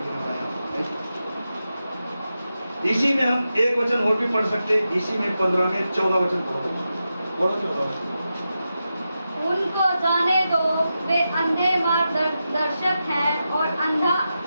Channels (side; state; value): both; inverted; correlation -0.90